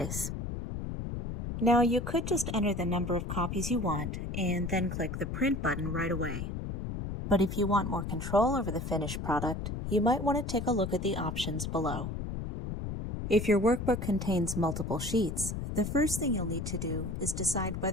Now you could just enter the number of copies you want and then click the Print button right away. But if you want more control over the finished product, you might want to take a look at the options below. If your workbook contains multiple sheets, the first thing you'll need to do is decide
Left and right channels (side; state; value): left; noise; rumble, 5 dB below the sound